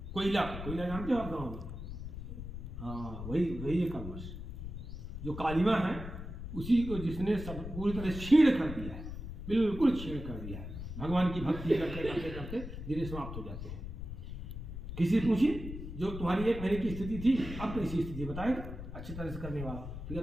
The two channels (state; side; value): noise; left; rumble, 8 dB below the sound